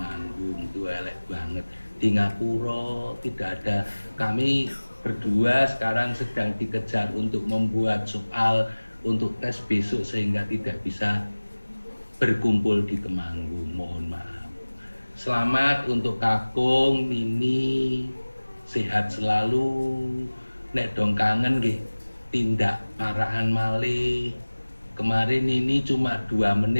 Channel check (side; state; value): both; inverted; correlation -1.00